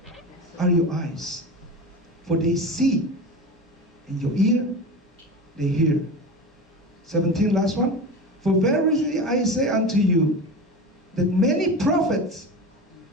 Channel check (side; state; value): both; normal; correlation 0.28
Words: are your eyes, for they see, and your ear, they hear. 17, last one. For verily I say unto you, that many prophets,